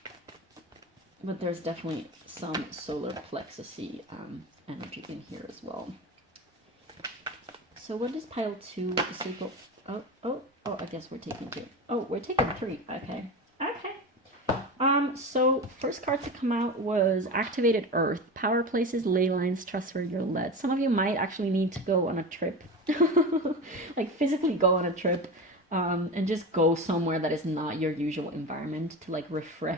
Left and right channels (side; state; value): both; normal; correlation 0.26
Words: But there's definitely some solar plexus-y energy in here as well. So what is pile 2? The sacral. Oh, I guess we're taking 2. Oh, we're taking 3. Okay. So first card to come out was Activated Earth. Power places, ley lines, trust where you're led. Some of you might actually need to go on a trip. Like physically go on a trip and just go somewhere that is not your usual environment to like